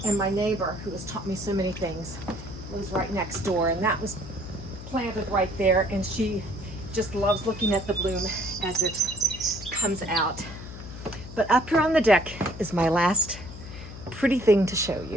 And my neighbor, who has taught me so many things, lives right next door, and that was planted right there, and she just loves looking at the bloom as it comes out. But up here on the deck is my last pretty thing to show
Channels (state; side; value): noise; left; hum, 13 dB below the sound